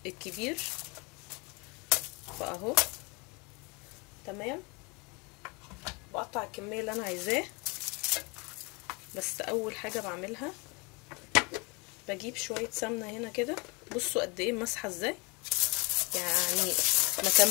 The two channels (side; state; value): right; quieter; 29.2 dB